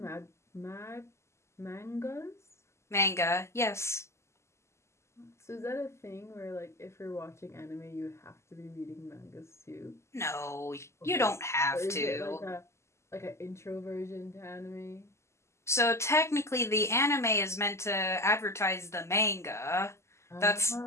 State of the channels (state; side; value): late; right; 0.13 ms